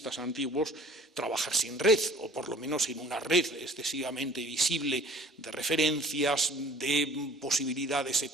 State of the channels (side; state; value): both; normal; correlation 0.48